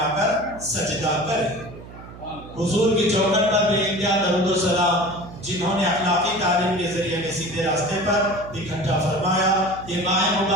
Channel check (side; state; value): right; noise; hum, 16 dB below the sound